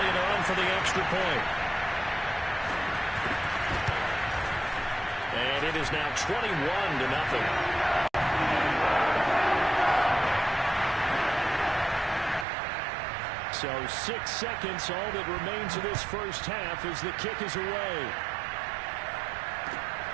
on for the extra point. And it is now 21-0. So 6 seconds, all that remains of this first half as the kick is away.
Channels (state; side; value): drops out; left; at 12.5 s